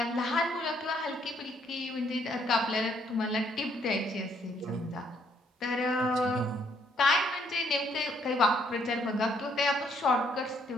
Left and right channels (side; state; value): both; normal; correlation 0.68